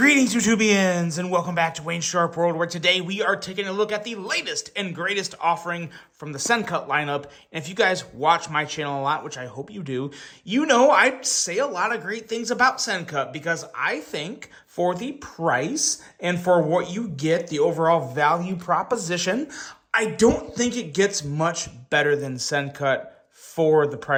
YouTubians, and welcome back to Wayne's Sharp World, where today we are taking a look at the latest and greatest offering from the Sencut lineup. And if you guys watch my channel a lot, which I hope you do, you know I say a lot of great things about Sencut because I think for the price and for what you get, the overall value proposition, I don't think it gets much better than Sencut for the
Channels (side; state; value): both; identical; correlation 1.00